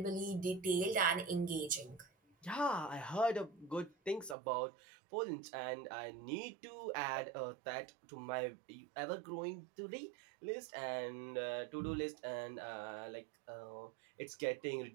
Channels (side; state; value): left; drops out; at 4.4 s